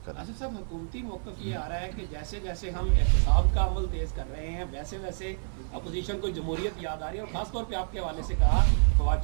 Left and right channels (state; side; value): silent; left; 56 dB below the other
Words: کریں. آصف صاحب، حکومتی موقف یہ آ رہا ہے کہ جیسے جیسے ہم احتساب کا عمل تیز کر رہے ہیں ویسے ویسے اپوزیشن کو جمہوریت یاد آ رہی ہے اور خاص طور پہ آپ کے حوالے سے کہا فواد